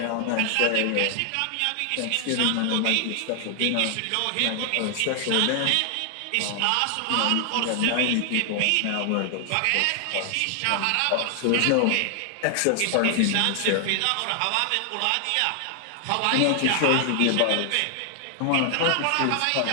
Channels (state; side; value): different; both; correlation 0.00